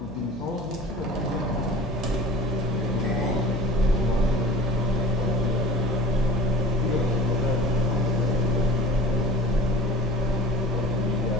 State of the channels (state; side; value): noise; left; hum, 18 dB below the sound